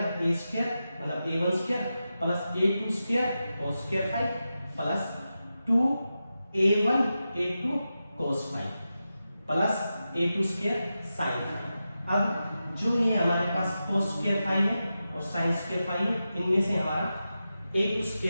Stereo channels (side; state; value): both; inverted; correlation -0.91